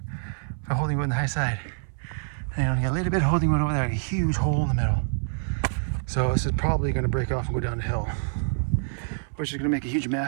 for holding wood on the high side. And I only got a little bit of holding wood over there, a huge hole in the middle. So this is probably going to break off and go down the hill, which is going to make a huge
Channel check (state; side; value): silent; left; 61 dB below the other